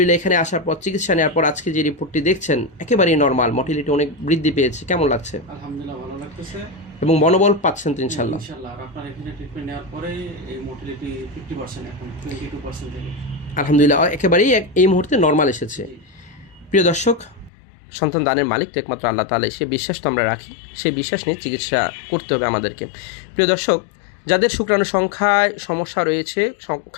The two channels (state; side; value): drops out; right; at 17.5 s